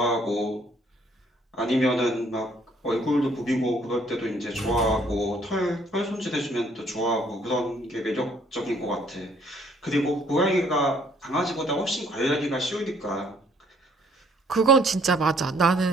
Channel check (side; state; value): both; normal; correlation 0.63